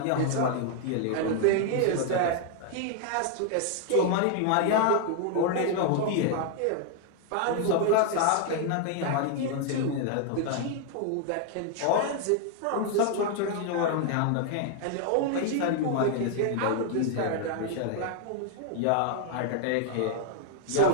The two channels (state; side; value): different; both; correlation 0.00